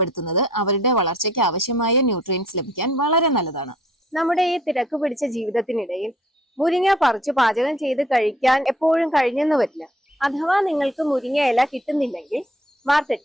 അവരുടെ വളർച്ചയ്ക്ക് ആവശ്യമായ ന്യൂട്രിയൻസ് ലഭിക്കാൻ വളരെ നല്ലതാണ്. നമ്മുടെ ഈ തിരക്ക് പിടിച്ച ജീവിതത്തിനിടയിൽ മുരിങ്ങ പറിച്ചു പാചകം ചെയ്ത് കഴിക്കാൻ എപ്പോഴും കഴിഞ്ഞെന്ന് വരില്ല. അഥവാ നിങ്ങൾക്ക് മുരിങ്ങ ഇല കിട്ടുന്നില്ലെങ്കിൽ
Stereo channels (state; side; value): normal; both; correlation 0.58